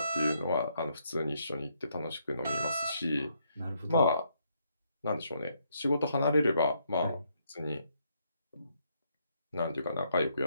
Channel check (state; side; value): inverted; both; correlation -0.74